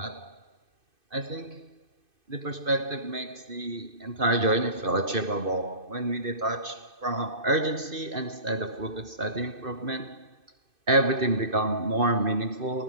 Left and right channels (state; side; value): late; left; 2.5 ms